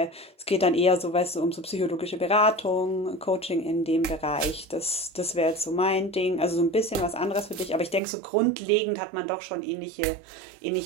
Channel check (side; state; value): left; drops out; at 8.0 s